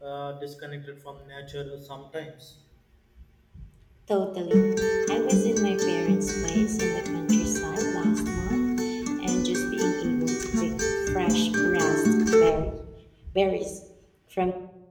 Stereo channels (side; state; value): both; identical; correlation 1.00